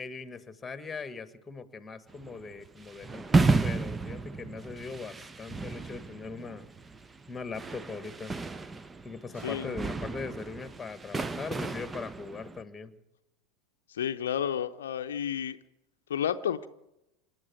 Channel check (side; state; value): both; normal; correlation 0.53